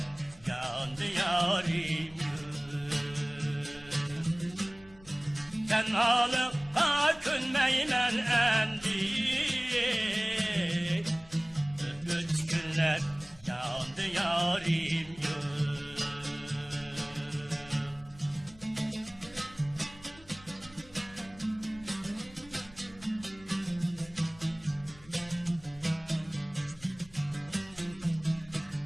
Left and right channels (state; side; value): noise; left; rumble, 23 dB below the sound